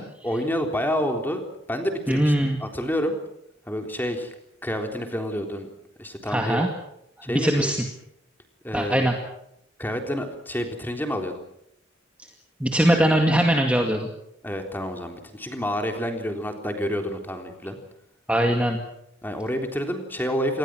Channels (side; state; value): both; normal; correlation 0.78